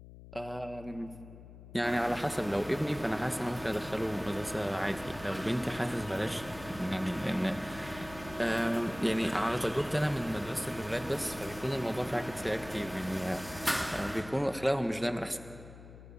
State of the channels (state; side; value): noise; left; hum, 17 dB below the sound